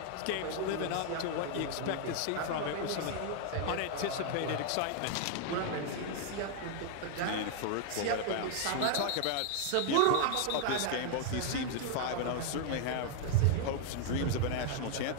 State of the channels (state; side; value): different; both; correlation 0.00